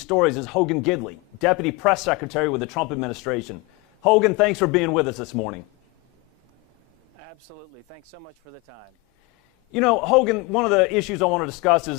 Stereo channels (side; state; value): right; quieter; 25.2 dB